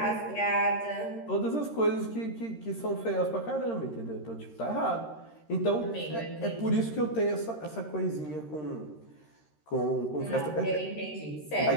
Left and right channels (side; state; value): right; late; 13 ms